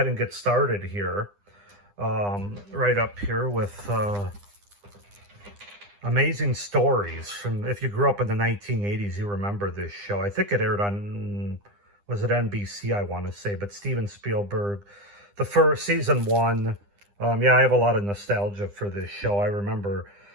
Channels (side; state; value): left; late; 9.9 ms